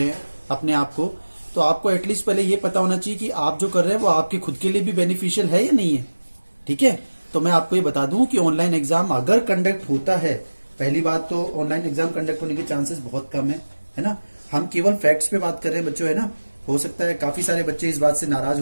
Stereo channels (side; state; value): both; inverted; correlation -1.00